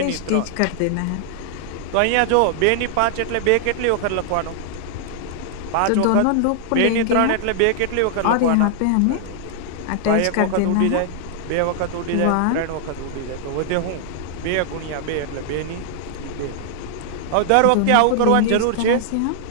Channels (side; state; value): both; different; correlation -0.01